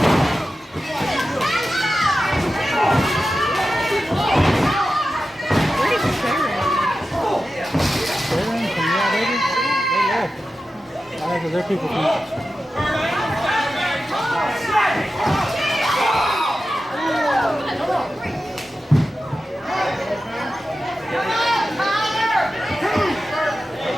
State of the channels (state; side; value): normal; both; correlation 0.92